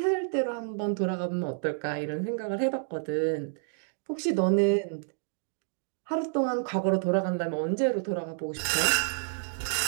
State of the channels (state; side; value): silent; left; digital silence